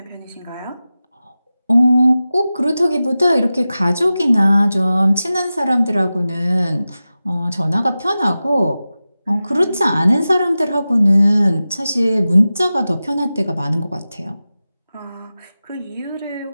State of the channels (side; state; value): both; inverted; correlation -0.95